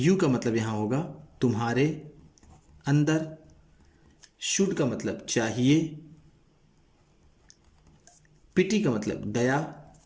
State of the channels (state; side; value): identical; both; correlation 1.00